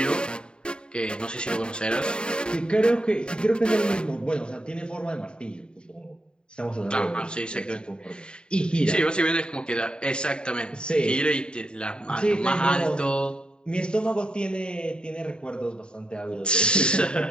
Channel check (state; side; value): late; right; 0.050 ms